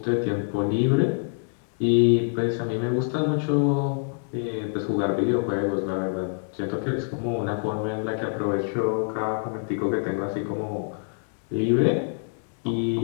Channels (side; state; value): right; silent; digital silence